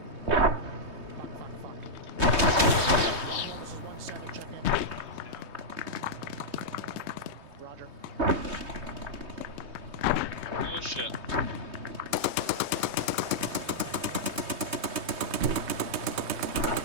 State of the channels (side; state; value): left; late; 3.2 ms